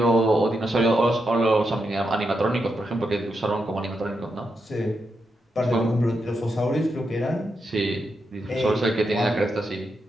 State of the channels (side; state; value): both; normal; correlation 0.84